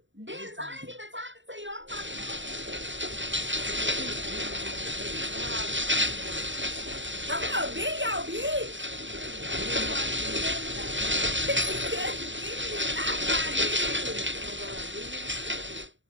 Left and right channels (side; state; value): left; late; 0.54 ms